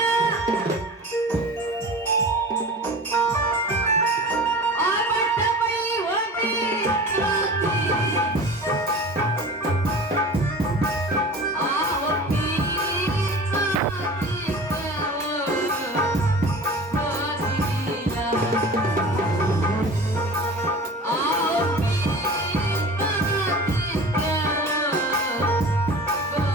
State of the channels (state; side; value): normal; both; correlation 0.37